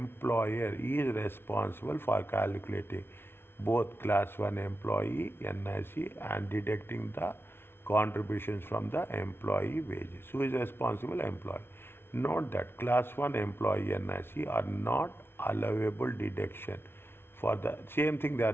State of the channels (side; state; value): right; late; 0.11 ms